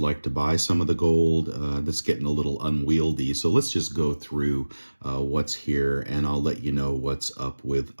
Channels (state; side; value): inverted; both; correlation -1.00